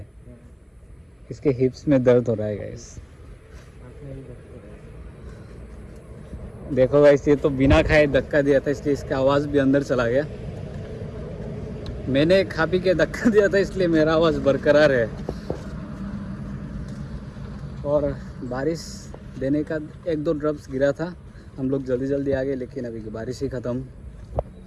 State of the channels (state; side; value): identical; both; correlation 1.00